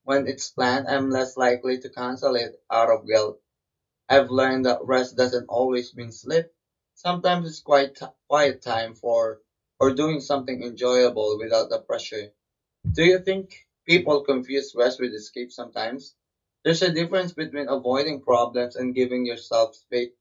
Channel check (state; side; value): identical; both; correlation 1.00